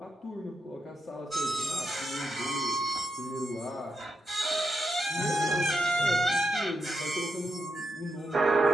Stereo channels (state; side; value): normal; both; correlation 0.84